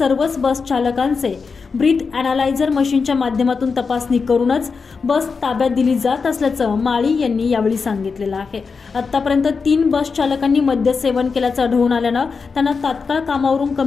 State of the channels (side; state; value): right; quieter; 5.0 dB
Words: बस चालकांचे ब्रीथ अनालायझर मशीनच्या माध्यमातून तपासणी करूनच बस ताब्यात दिली जात असल्याचं माळी यांनी यावेळी सांगितलेलं आहे। आतापर्यंत 3 बस चालकांनी मद्य सेवन केल्याचं आढळून आल्यानं त्यांना तात्काळ कामावरून